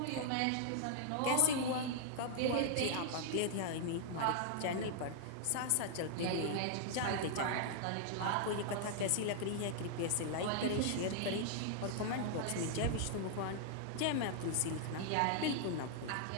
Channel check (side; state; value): both; different; correlation -0.01